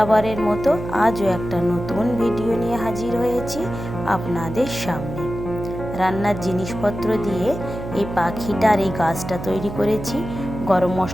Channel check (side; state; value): right; noise; hum, 9 dB below the sound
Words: মতো আজও একটা নতুন ভিডিও নিয়ে হাজির হয়েছি আপনাদের সামনে। রান্নার জিনিসপত্র দিয়ে এই পাখিটার এই গাছটা তৈরি করেছি। গরম